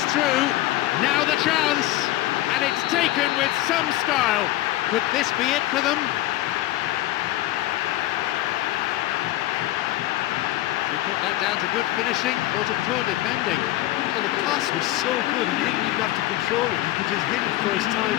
through. Now the chance. And it's taken with some style. Could this be it for them? Put that down to good finishing or to poor defending. Well, the pass was so good, he didn't even have to control it. He could just hit it first time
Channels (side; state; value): right; quieter; 15.9 dB